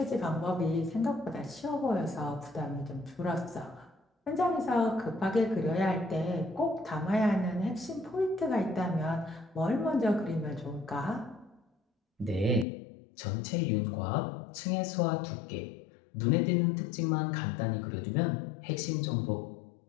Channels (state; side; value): drops out; right; at 12.7 s